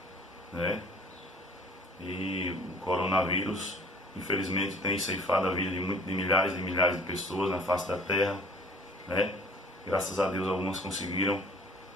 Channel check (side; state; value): both; normal; correlation 0.51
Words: e o coronavírus, infelizmente, tem ceifado a vida de milhares e milhares de pessoas na face da terra, Graças a Deus, algumas conseguiram